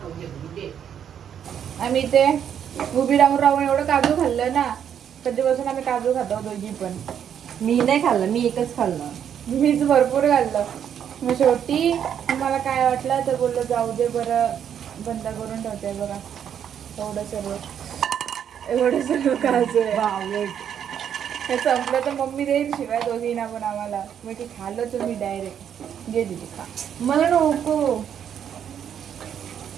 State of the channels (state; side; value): quieter; left; 8.8 dB